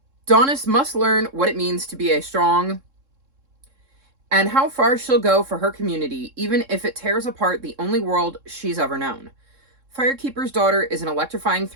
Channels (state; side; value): late; left; 3.7 ms